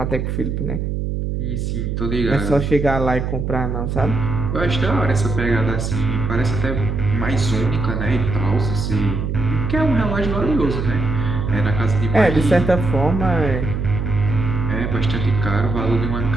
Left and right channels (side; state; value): right; noise; hum, 2 dB below the sound